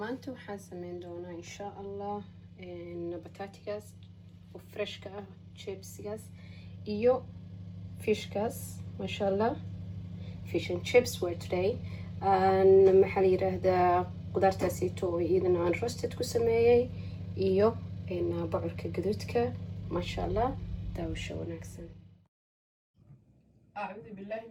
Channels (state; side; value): identical; both; correlation 1.00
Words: waxaan sameyn doonaa insha allah bataatigaas oo freshka ah, chipsigaas iyo fishkaas. masha allah, fish and chips were today. maxaa la yiraahdaa qudaartaasito oo iyadana aan roasted ku sameeyey iyo bocorka gaduudka. masha allah, daawasho wanaagsan. أعوذ بالله